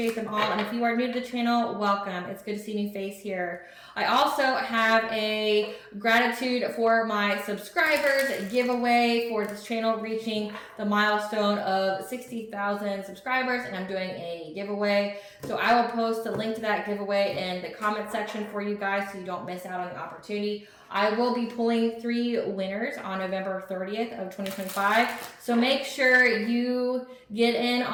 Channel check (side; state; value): both; identical; correlation 1.00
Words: them all. And if you are new to the channel, welcome. It's good to see a new face here. I also have a gratitude for my subscribers giveaway for this channel reaching the milestone of 60,000 subscribers, and I'm doing a giveaway. So I will post the link to that giveaway in the comment section for you guys so you don't miss out on the opportunity. I will be pulling 3 winners on November 30th of 2025. So make sure you get in